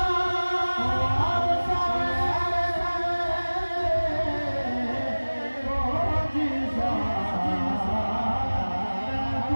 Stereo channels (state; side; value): inverted; both; correlation -1.00